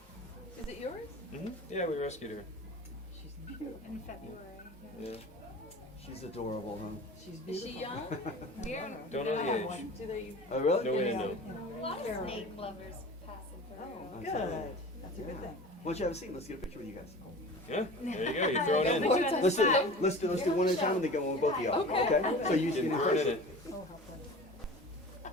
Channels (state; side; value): normal; both; correlation 0.38